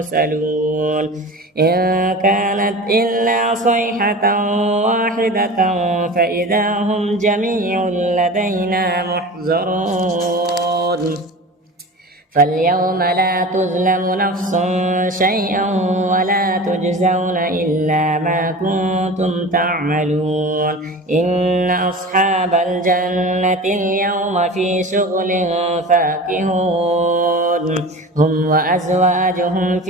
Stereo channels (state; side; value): normal; both; correlation 0.34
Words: إن كانت إلا صيحة واحدة فإذا هم جميع لدينا محضرون فاليوم لا تظلم نفس شيئا ولا تجزون إلا ما كنتم تعملون إن أصحاب الجنة اليوم في شغل فاكهون هم وأزواجهم